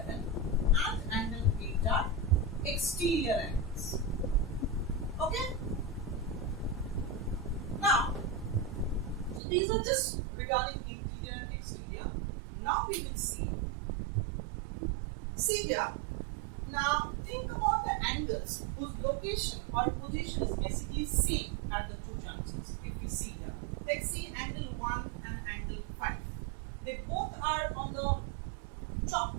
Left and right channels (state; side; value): drops out; left; at 9.4 s